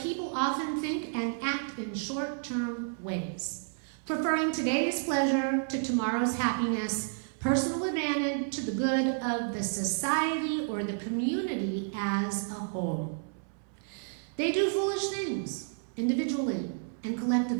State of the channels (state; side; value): silent; left; 57 dB below the other